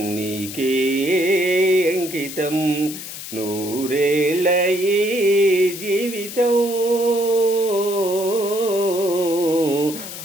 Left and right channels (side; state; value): left; noise; hiss, 10 dB below the sound